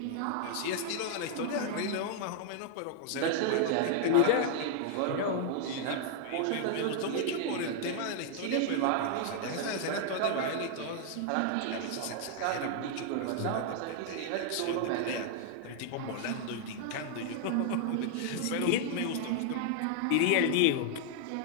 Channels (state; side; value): different; both; correlation 0.00